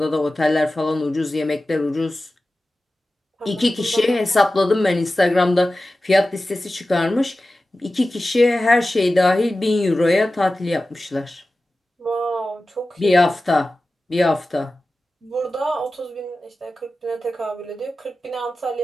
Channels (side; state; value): both; normal; correlation 0.95